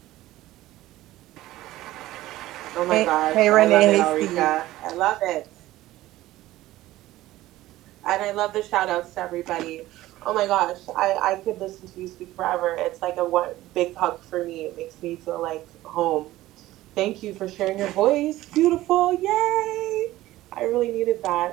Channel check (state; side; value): quieter; left; 16.1 dB